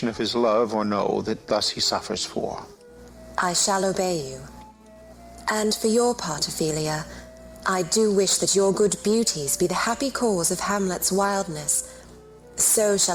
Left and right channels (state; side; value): identical; both; correlation 1.00